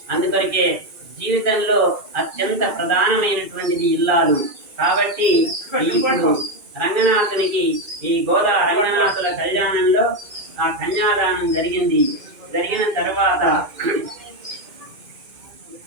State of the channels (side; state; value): left; late; 2.4 ms